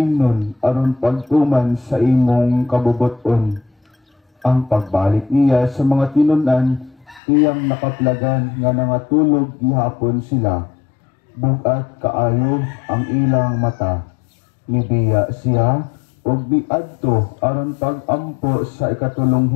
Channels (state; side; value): drops out; right; at 7.2 s